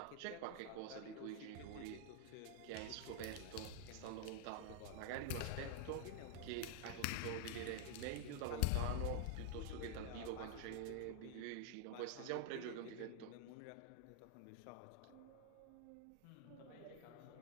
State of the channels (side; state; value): both; different; correlation 0.00